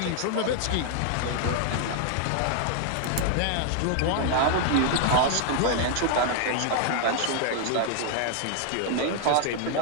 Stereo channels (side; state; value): both; different; correlation 0.00